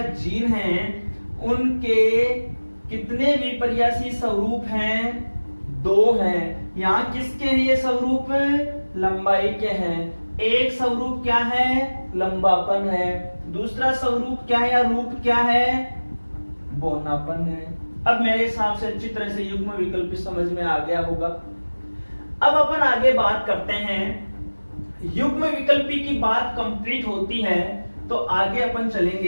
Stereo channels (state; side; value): inverted; both; correlation -1.00